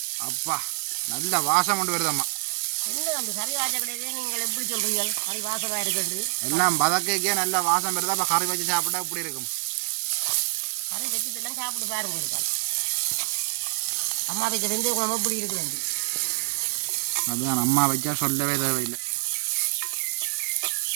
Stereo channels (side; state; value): left; silent; digital silence